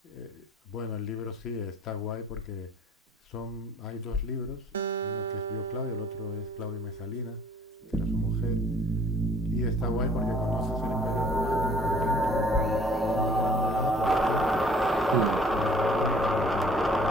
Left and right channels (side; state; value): both; normal; correlation 0.55